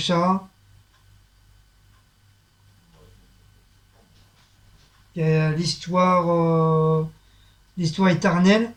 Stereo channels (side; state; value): both; identical; correlation 1.00